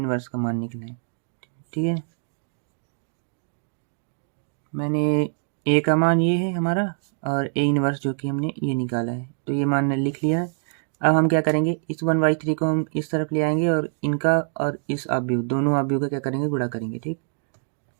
का मान निकलना है, ठीक है। मैंने ए का मान ये है हमारा, और ए इन्वर्स जो कि हमने ये निकाला है, तो ये मान लिख लिया है। अब हम क्या करेंगे, इस 1/3 को हम इस तरफ ले आएंगे, और इनका और इस अवयव, दोनों अवयव का क्या करेंगे, गुणा करेंगे, ठीक।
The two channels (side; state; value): left; silent; 62 dB below the other